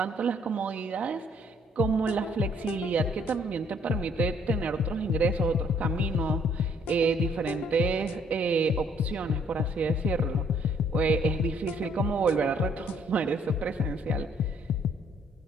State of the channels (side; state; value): both; normal; correlation 0.64